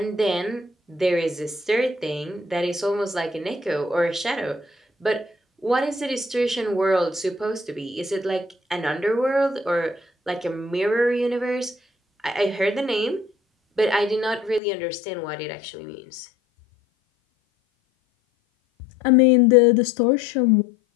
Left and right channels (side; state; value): right; drops out; at 14.6 s